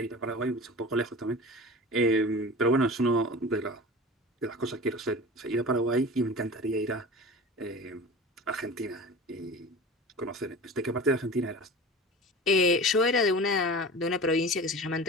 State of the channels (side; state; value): both; normal; correlation 0.35